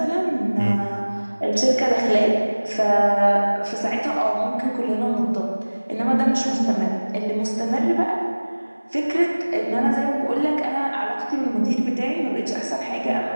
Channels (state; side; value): inverted; both; correlation -1.00